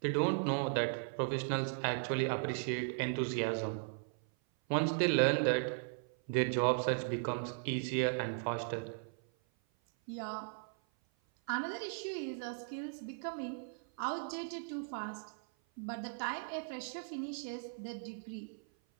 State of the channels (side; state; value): left; silent; 53 dB below the other